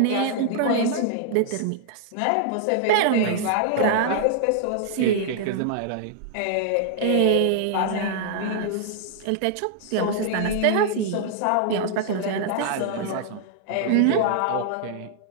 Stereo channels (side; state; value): both; different; correlation -0.01